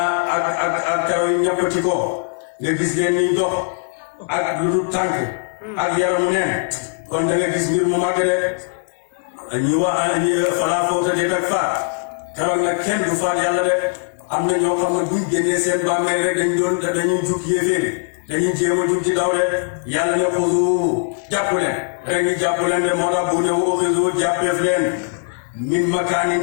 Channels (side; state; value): right; silent; digital silence